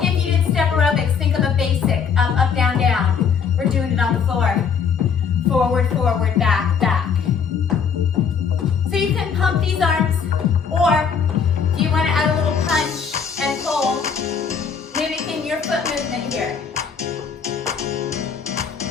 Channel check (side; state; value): right; quieter; 6.5 dB